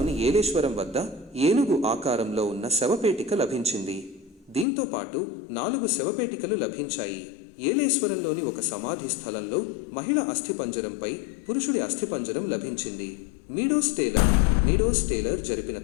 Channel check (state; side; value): drops out; right; at 4.7 s